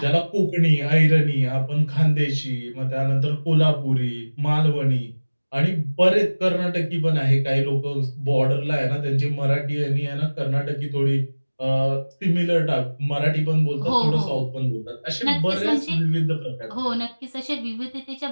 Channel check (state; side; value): inverted; both; correlation -1.00